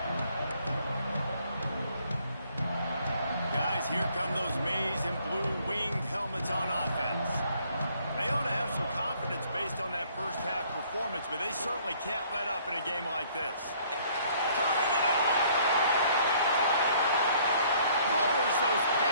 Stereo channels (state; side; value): inverted; both; correlation -0.61